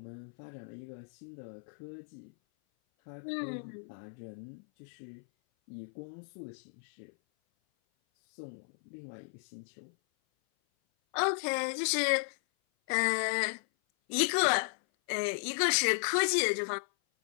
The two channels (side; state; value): right; silent; 55 dB below the other